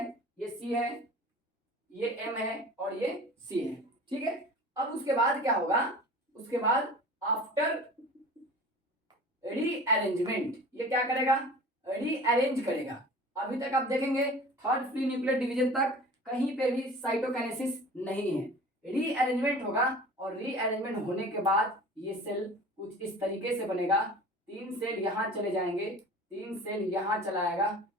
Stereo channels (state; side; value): normal; both; correlation 0.41